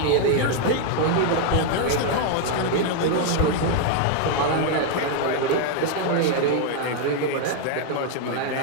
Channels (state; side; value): different; both; correlation 0.00